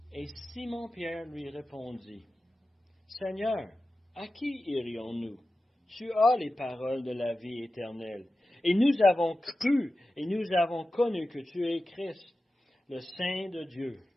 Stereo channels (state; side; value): normal; both; correlation 0.93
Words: Et Simon-Pierre lui répondit, « Seigneur, à qui irions-nous? Tu as les paroles de la vie éternelle. Et nous avons cru et nous avons connu que tu es Christ, le Saint de Dieu.